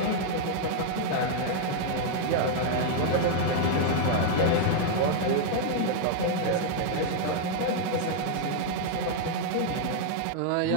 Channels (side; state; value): both; different; correlation 0.00